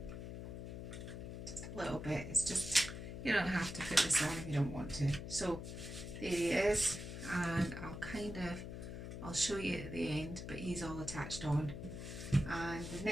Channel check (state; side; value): noise; left; hum, 8 dB below the sound